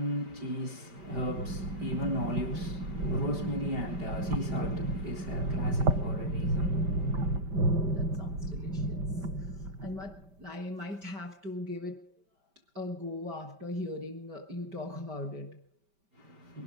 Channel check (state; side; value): late; left; 5.1 ms